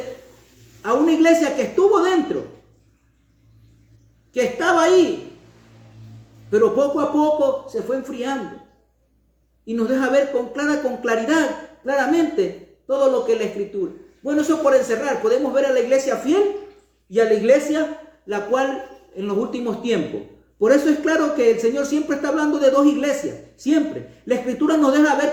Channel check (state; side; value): identical; both; correlation 1.00